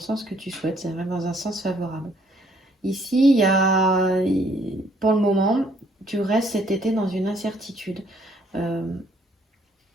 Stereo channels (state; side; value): normal; both; correlation 0.65